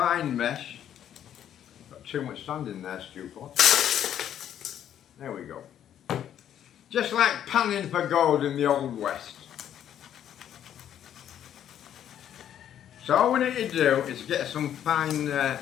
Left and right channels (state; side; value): quieter; right; 10.2 dB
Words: mesh. Got too much sand in there, stupid. There we go. Just like panning for gold in the Old West. So all we need to do is get some fine